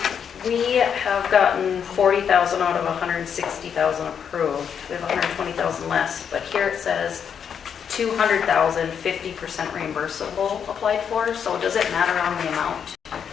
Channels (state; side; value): quieter; right; 7.6 dB